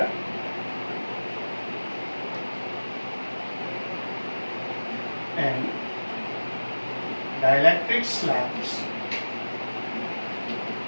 and dielectric slabs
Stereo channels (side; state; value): both; inverted; correlation -1.00